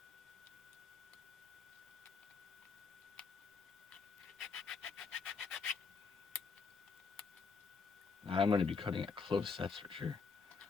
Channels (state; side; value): quieter; right; 5.0 dB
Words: I'm going to be cutting it close, that's for sure.